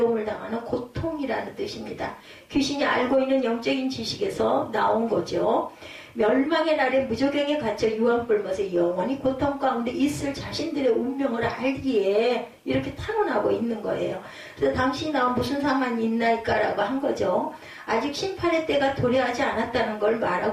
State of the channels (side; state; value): both; identical; correlation 1.00